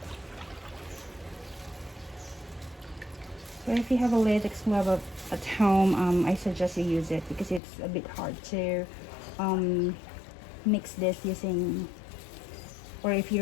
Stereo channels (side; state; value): right; drops out; at 7.6 s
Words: So if you have a latex glove at home, I suggest you use it because it's a bit hard to mix this using, or if